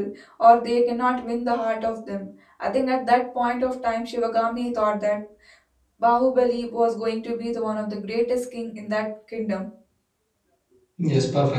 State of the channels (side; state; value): both; identical; correlation 1.00